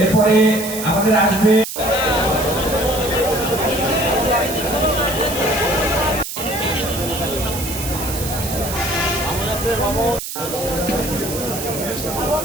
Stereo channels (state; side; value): noise; right; hiss, 7 dB below the sound